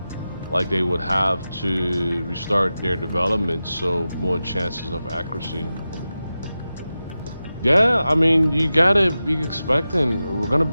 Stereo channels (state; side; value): inverted; both; correlation -0.93